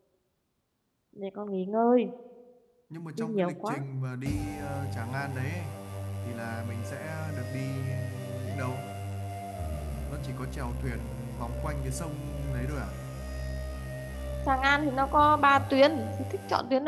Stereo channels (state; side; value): identical; both; correlation 1.00